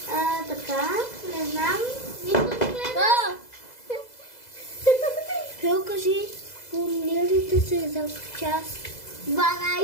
Така, не знам. Нищо не гледа. Пел, кажи, формулирайте се за час.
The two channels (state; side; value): late; right; 2.0 ms